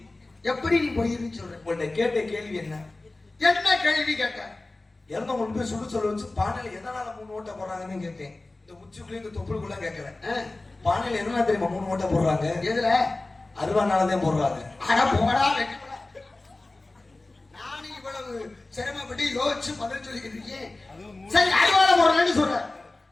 எப்படி நீ பொய்ன்னு சொல்ற? உங்கள்ட்ட கேட்ட கேள்வி என்ன? என்ன கேள்வி கேட்ட? இறந்த கொண்டு போய் சுடு சொல்ல வச்சு பானையில எதனால 3 ஓட்டை போடுறாங்கன்னு கேட்டேன். இந்த உச்சிக்குள்ளே இந்த தொப்புளுக்குள்ள கேட்கறேன். பானையில எதனால தெரியுமா 3 ஓட்டை போடுறாங்க? எதுல? அருவானாலதான் போடுறாங்க. ஆனா போடா வெட்டப்படா. நானும் இவ்வளவு சிரமப்பட்டு யோசிச்சு பதில் சொல்லிக்கிட்டு இருக்கேன். சரி, அருவால போடுறேன்னு சொல்ற.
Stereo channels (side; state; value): right; quieter; 3.0 dB